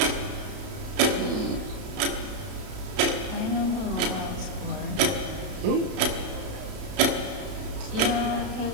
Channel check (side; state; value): left; late; 32 ms